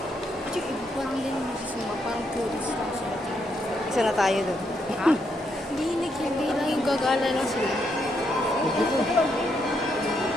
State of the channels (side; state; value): both; normal; correlation 0.78